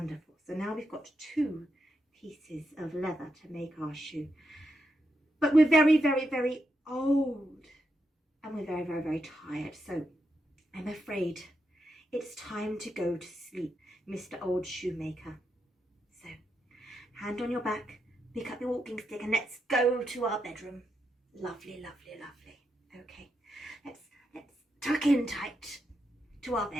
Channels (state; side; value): normal; both; correlation 0.84